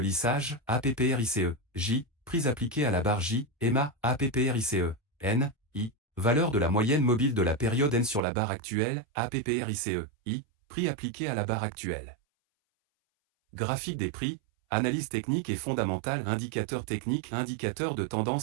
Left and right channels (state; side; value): drops out; left; at 8.2 s